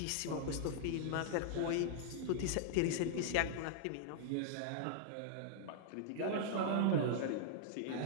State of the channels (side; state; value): both; different; correlation -0.01